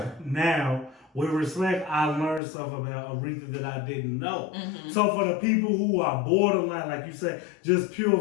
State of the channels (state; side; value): drops out; right; at 2.4 s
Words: Now, with Respect, I learned stuff about Aretha that I didn't know. Mm-hmm. So for the people who are borderline, like you said, just pure